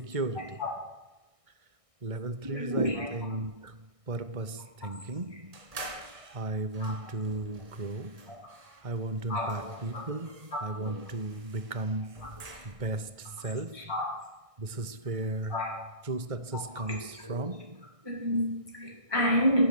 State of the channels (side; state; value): left; late; 1.6 ms